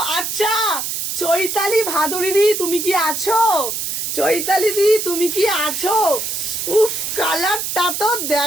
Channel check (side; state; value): right; noise; hiss, 3 dB below the sound